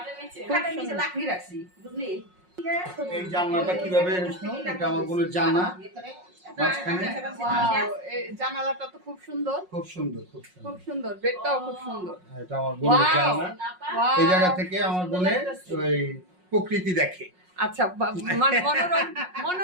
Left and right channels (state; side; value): late; left; 5.5 ms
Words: খাটের নিচে লাকড়ি রাখছি, বুঝলি? এই জানলাটা কিভাবে হয়েছিল, এটা আমার বোনের জানা, মাঝখানে। ওয়াও, এই জানালাটা তো খুব সুন্দর, খুব সুন্দর, খুব সুন্দর। খুব সুন্দর। বেডটাও খুব সুন্দর। এটা আমার বোনের Wow. জানা। ওয়াও, এই জায়গা থেকে আমার বোনের ওই প্রকৃতি দেখে। আচ্ছা, মনোরম